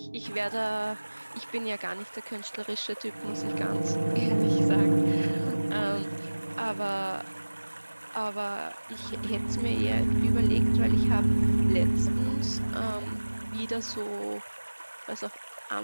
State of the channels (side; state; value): both; inverted; correlation -1.00